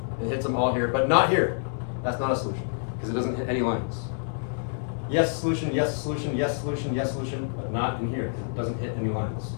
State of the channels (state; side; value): silent; right; 60 dB below the other